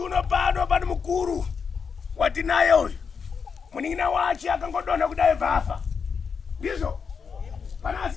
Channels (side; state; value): right; quieter; 5.9 dB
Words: pano pani mukuru watinaye uyu muning'ina wache akangodonha kudai vafa ndizvo pana